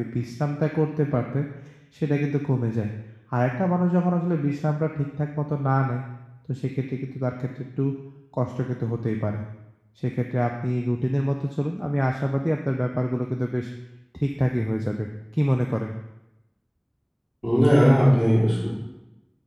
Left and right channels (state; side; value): identical; both; correlation 1.00